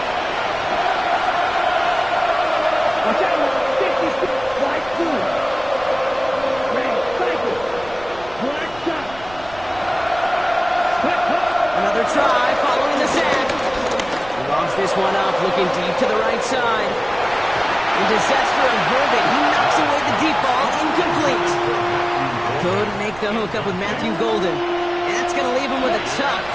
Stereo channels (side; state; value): right; noise; rumble, 19 dB below the sound